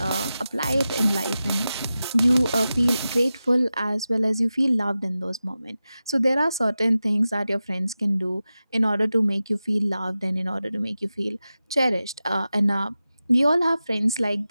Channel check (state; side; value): inverted; both; correlation -0.93